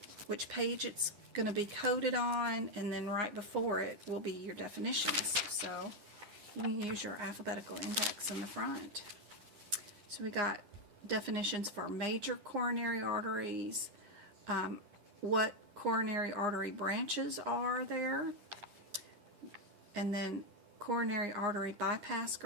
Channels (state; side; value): late; left; 9.7 ms